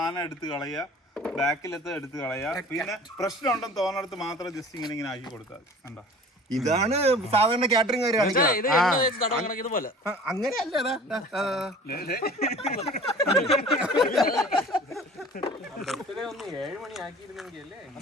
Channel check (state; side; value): normal; both; correlation 0.45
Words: എടുത്ത് കളയുക, ബാക്കിലത്തെ എടുത്ത് കളയുക. പിന്നെ പ്രശ്നം ഉണ്ടെന്ന് തോന്നിടത്ത് മാത്രം ജസ്റ്റ് ഇങ്ങനെ ആക്കി കൊടുത്താൽ മതി. കണ്ടോ, ഇതാണ് സാധാരണ കാറ്ററിംഗ് ഇതുപോലെ. അങ്ങനെയല്ല. 7 മണി ആക്കിയിരുന്നെങ്കിൽ അല്ലേ